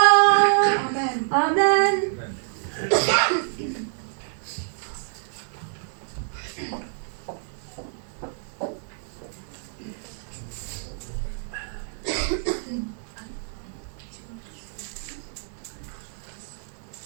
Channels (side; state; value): left; silent; 60 dB below the other